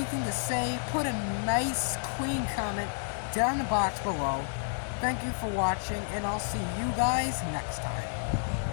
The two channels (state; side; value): silent; right; digital silence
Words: to say, put a nice, clean comment down in the box below. Thank you for watching, and I'll see you guys next time.